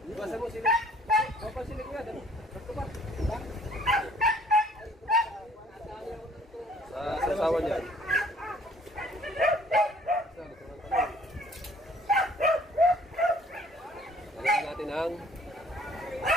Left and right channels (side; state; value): both; normal; correlation 0.57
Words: Ibasa mo sila. Papasilig nga. Basto pa. Sa sasawan yan. Lagyan natin ang